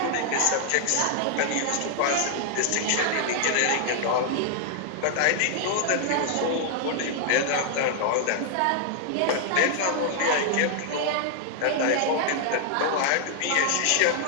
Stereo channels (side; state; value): both; different; correlation 0.00